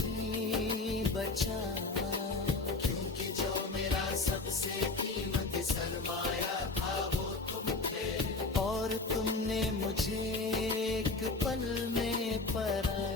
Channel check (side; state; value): right; quieter; 3.5 dB